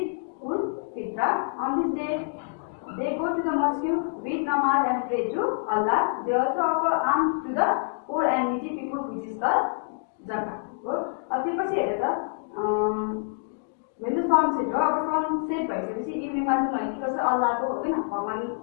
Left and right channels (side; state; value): right; silent; digital silence